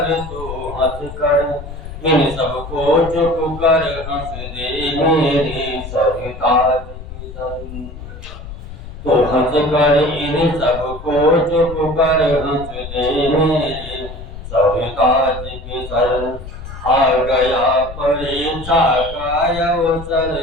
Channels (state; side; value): noise; left; rumble, 12 dB below the sound